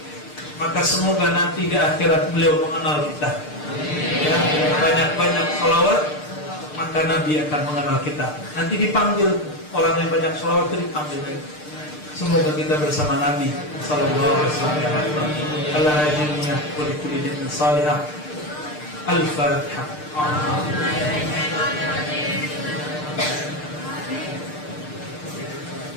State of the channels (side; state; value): right; late; 6.6 ms